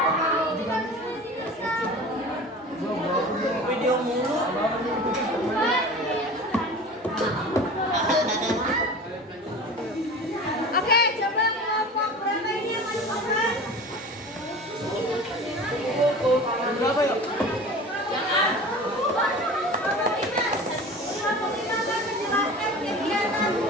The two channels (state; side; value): normal; both; correlation 0.37